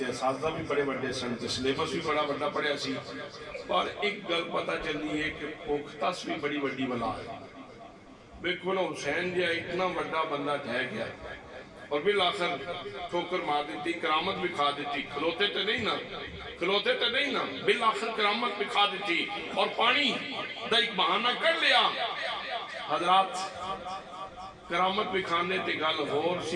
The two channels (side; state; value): both; identical; correlation 1.00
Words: اساتذہ بھی بڑے بڑے سن تے سلیبس بھی بڑا بڑا پڑھیا سی. اور ایک گل پتہ چلی ہے کہ پوختس بھی بڑی بڑی بلا ہے. بالکل حسین جی اتنا بڑا بندہ ٹھہ گیا اور بالآخر ٹھوکر مار دیتی کرامت بھی کھا دیتی. کھلوتے تے نہیں نا بالآخر کرامت بھی کھا دیتی اور پانی دا ایک بہانہ کر لیا. حضرات کرامت بھی کھانے تے گل غور